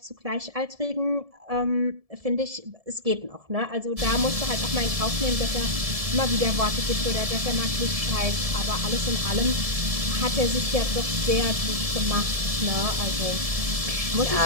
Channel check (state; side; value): late; left; 1.7 ms